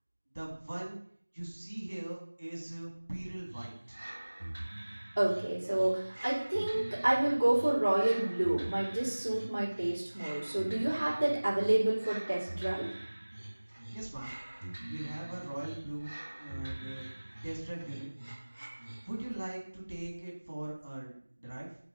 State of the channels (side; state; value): both; inverted; correlation -1.00